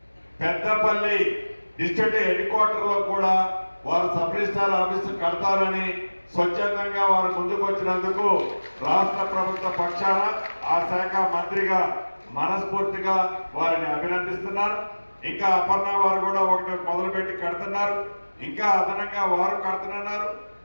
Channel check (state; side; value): inverted; both; correlation -1.00